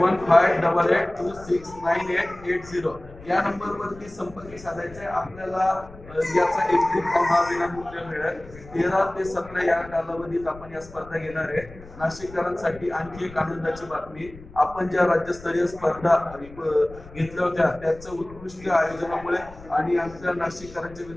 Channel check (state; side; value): noise; left; rumble, 18 dB below the sound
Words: या नंबरवरती संपर्क साधायचा आहे। आपल्याला याचा एक्झिट फॉर्म हा विनामूल्य मिळेल। 13 ते 17 या कालावधीत आपण या स्पर्धा घेणार आहे। नाशिककरांसाठी आणखी एक आनंदाची बातमी, आपण ज्या राज्यस्तरीय स्पर्धा घेतल्या होत्या त्याचं उत्कृष्ट आयोजनामुळे आणि आमच्या नाशिककरांच्या